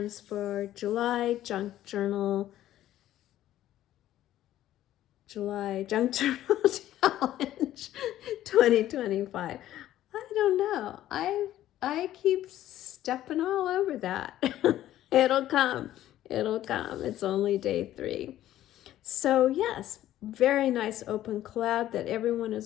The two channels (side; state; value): right; quieter; 13.2 dB